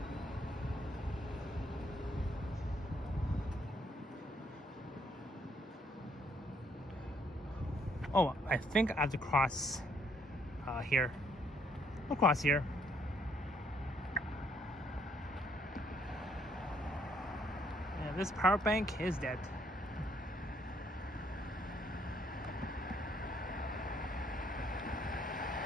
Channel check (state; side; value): normal; both; correlation 0.69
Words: Oh, I think I have to cross here. I'll cross here. Yeah, this power bank is dead.